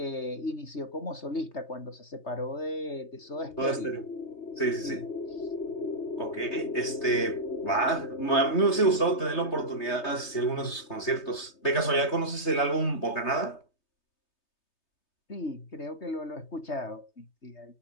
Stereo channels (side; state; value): right; late; 3.3 ms